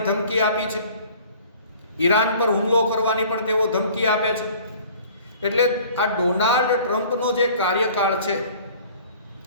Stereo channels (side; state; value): both; inverted; correlation -0.49